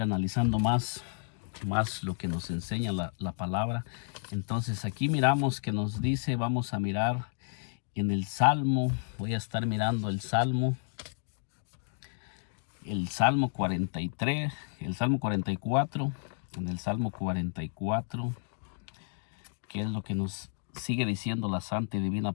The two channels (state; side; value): silent; right; digital silence